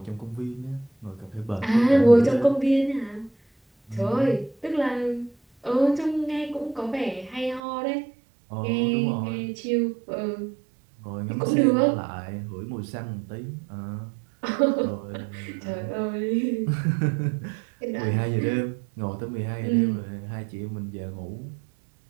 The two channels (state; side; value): drops out; left; at 7.6 s